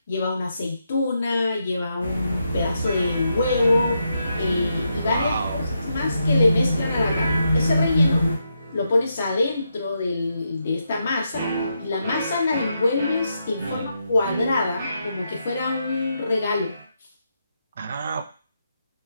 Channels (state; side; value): inverted; both; correlation -0.83